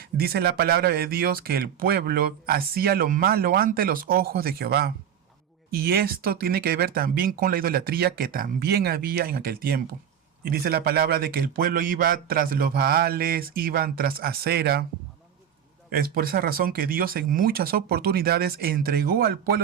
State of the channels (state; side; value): quieter; left; 8.9 dB